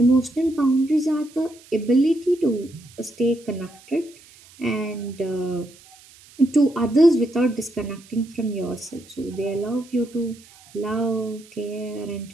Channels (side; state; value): right; noise; hiss, 24 dB below the sound